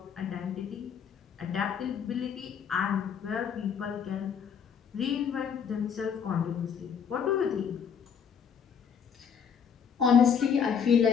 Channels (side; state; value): right; quieter; 7.3 dB